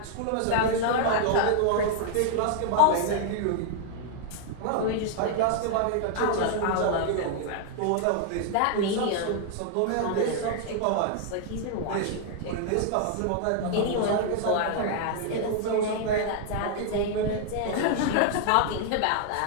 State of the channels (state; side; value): different; both; correlation 0.00